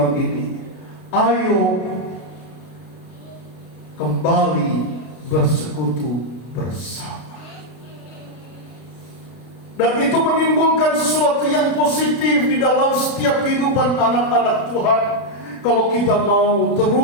ini. Ayo kembali bersekutu bersama. Dan itu menimbulkan sesuatu yang positif di dalam setiap kehidupan anak-anak Tuhan. Kalau kita mau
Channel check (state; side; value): late; right; 32 ms